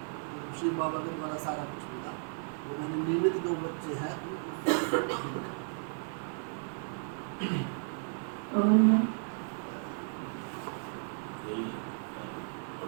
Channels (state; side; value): silent; left; 55 dB below the other